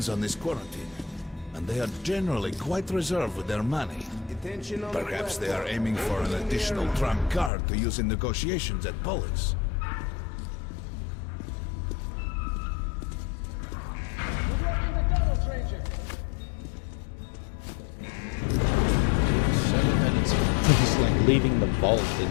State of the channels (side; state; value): right; drops out; at 7.5 s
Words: on this quarantine. And they are generally quite reserved with their money. It Attention on Perhaps the they are aiming for an additional trump card to use in negotiations at Polis. We're blocking the tunnels, Ranger. 7 minutes. It's like leaving the vault in